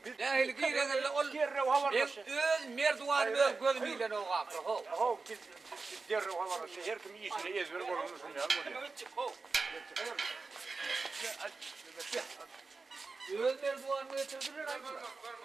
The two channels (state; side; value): quieter; left; 4.1 dB